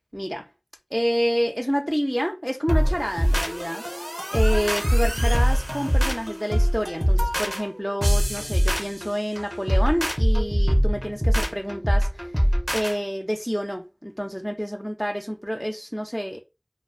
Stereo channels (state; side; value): identical; both; correlation 1.00